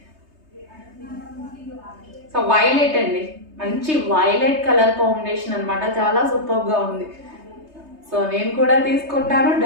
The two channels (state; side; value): late; left; 3.3 ms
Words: సో వైలెట్ అండి, మంచి వైలెట్ కలర్ కాంబినేషన్ అనమాట, చాలా సూపర్గా ఉంది. సో నేను కూడా తీసుకుంటాను,